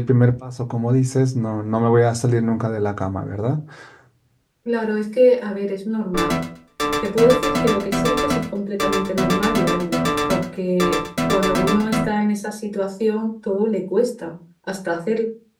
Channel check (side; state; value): both; identical; correlation 1.00